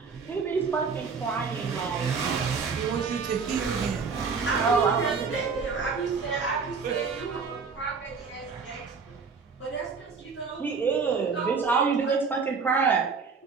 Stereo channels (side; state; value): left; quieter; 5.2 dB